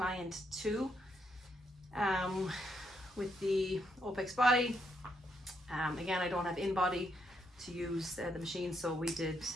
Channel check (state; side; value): normal; both; correlation 0.77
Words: 2 with the OPEX body. Again, I don't have in-body to use the machine, so we did